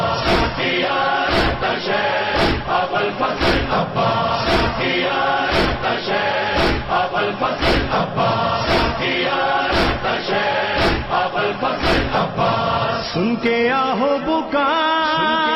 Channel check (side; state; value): both; identical; correlation 1.00